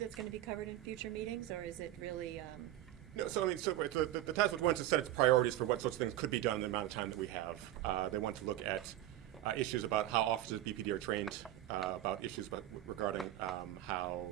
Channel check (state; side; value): quieter; left; 13.9 dB